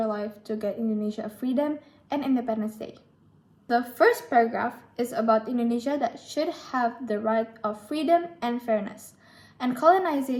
life to get Indonesia a freedom and Independence Day. The first paragraph is about Indonesia that should have the right of freedom and fairness, and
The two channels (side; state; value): both; identical; correlation 1.00